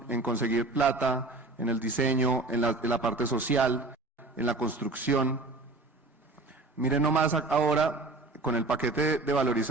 en conseguir plata, en el diseño, en la parte social, en la construcción. Miren nomás ahora, con el paquete de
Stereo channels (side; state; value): left; quieter; 3.2 dB